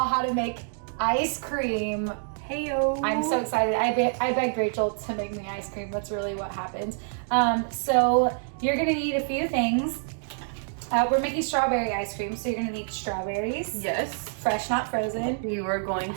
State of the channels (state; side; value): silent; left; digital silence